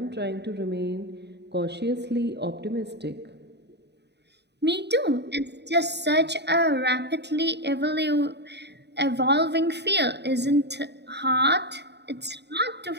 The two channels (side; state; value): left; late; 0.49 ms